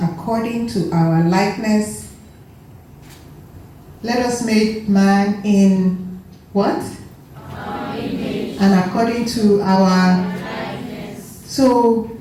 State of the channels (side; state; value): both; identical; correlation 1.00